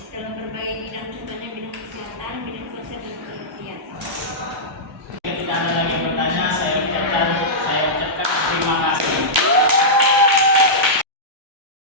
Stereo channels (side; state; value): both; normal; correlation -0.12